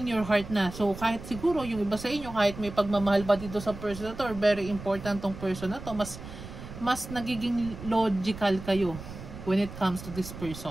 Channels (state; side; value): noise; right; rumble, 12 dB below the sound